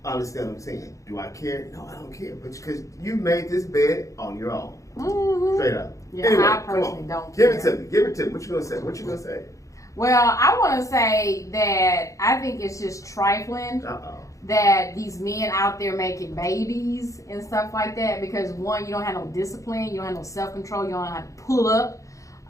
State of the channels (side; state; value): right; late; 0.16 ms